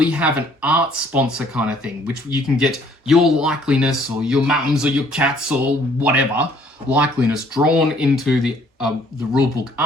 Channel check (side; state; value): both; normal; correlation 0.61